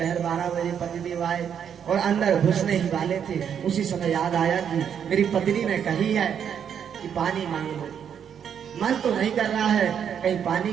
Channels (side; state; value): left; quieter; 8.2 dB